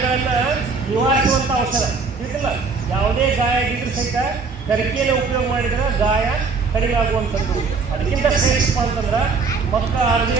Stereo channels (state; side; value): quieter; left; 4.6 dB